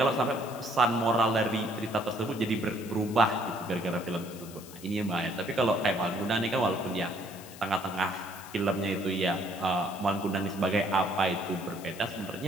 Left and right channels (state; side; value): noise; left; hiss, 17 dB below the sound